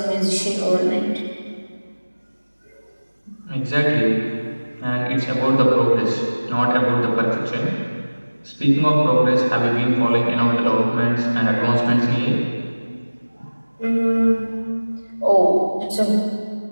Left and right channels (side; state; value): both; inverted; correlation -1.00